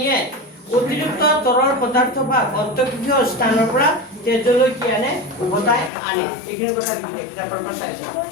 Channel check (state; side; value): drops out; right; at 5.9 s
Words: অতিৰিক্ত তৰল পদাৰ্থ বা অন্তঃকোষীয় স্থানৰ পৰা তেজলৈ কি আনে উভতাই আনে এইখিনি কথা লিখি কিতাপৰ পৰা চাইছো